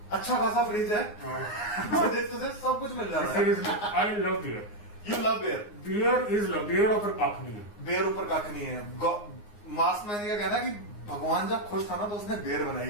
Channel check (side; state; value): right; late; 9.6 ms